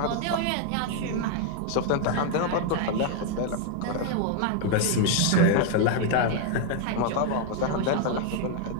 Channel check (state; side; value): different; both; correlation 0.00